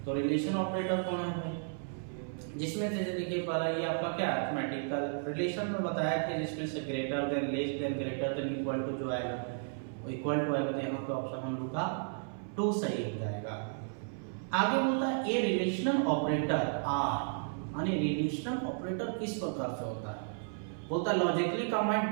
तो रिलेशन ऑपरेटर कौन है जिसमें से देखिए पहला ये आपका क्या अरिथमेटिकल रिलेशन में बताया था जिसमें से greater than less than greater than equal to जो आएगा वो इक्वल टू आएगा, तो यहाँ पे ऑप्शन हम लोग का 2 सही हो जाएगा। आगे बोलता है ए रिलेशनल ऑपरेटर आर, यानी रिलेशनल ऑपरेटर किस प्रकार से होता है। बोलता है लॉजिकली कंबाइन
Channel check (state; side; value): silent; left; 55 dB below the other